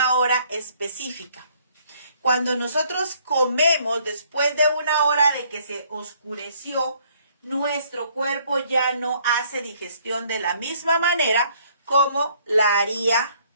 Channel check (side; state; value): both; inverted; correlation -0.63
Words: hora específica. Cuando nosotros comemos después de 1 hora de que se oscureció, nuestro cuerpo ya no hace digestión de la misma manera como la haría